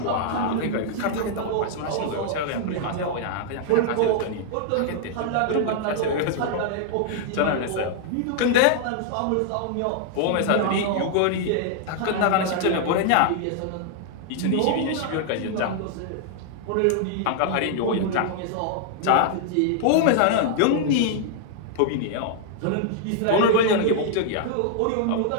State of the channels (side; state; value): both; different; correlation -0.01